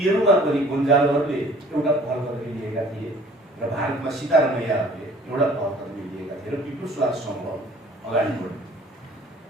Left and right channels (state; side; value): normal; both; correlation 0.52